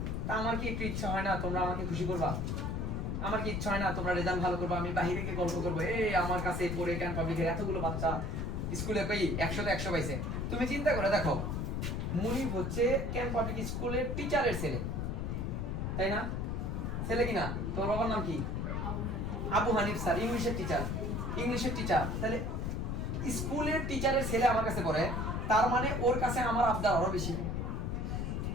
তা আমার কি একটু ইচ্ছা হয় না তোমরা আমাকে খুশি করবা? আমার কি ইচ্ছা হয় না তোমরা রেজাল্ট ভালো করবা, আমি বাইরে গিয়ে গল্প করবো এই আমার কাছে পড়ে ক্যান পাবলিকের এতগুলো বাচ্চা স্কুলে কই 100তে 100 পাইছে। তুমি চিন্তা করে দেখো, মুনিফ হচ্ছে ক্যান পাবলিক স্কুলের টিচারের ছেলে, তাই না? ছেলে কিনা? তোমার বাবার নাম কি? আবু হানিফ স্যার, ইংলিশের টিচার। তাহলে স্কুলের টিচারের ছেলে আমার কাছে পড়ে, তার মানে ওর কাছে আমার আবদার আরো বেশি।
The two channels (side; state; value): left; noise; rumble, 1 dB below the sound